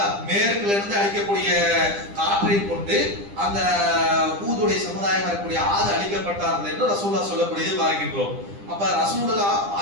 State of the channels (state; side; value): late; left; 10 ms